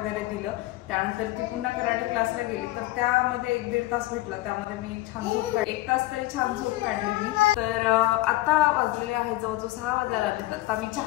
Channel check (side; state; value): right; quieter; 17.8 dB